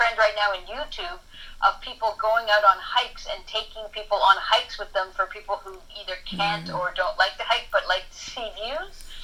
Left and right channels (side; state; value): both; identical; correlation 1.00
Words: right now in YouTube of people going out on hikes and taking people on hikes with them for people who either can't or don't like to hike but like to see views.